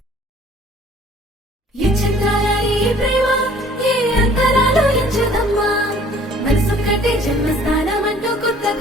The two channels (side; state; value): both; normal; correlation 0.55